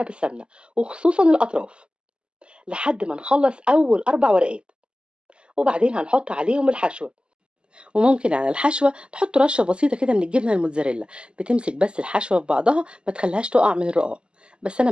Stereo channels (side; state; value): left; late; 0.051 ms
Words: بالسمنة، وخصوصا الأطراف، لحد ما نخلص أول 4 ورقات. وبعدين هنحط عليهم الحشوة. وممكن على الحشوة تحط رشة بسيطة كده من الجبنة الموتزاريلا، بتمسك بس الحشوة في بعضها ما تخليهاش تقع من الرقاق. بس أنا